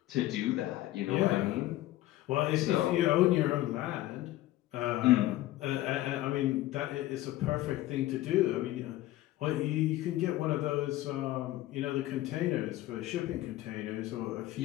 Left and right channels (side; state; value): right; quieter; 15.7 dB